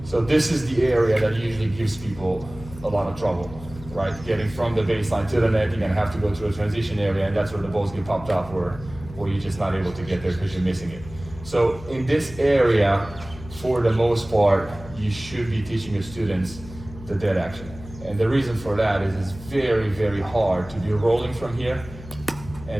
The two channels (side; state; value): left; noise; hum, 15 dB below the sound